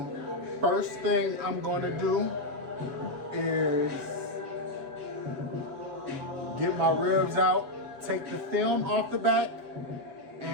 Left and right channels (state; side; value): late; left; 7.5 ms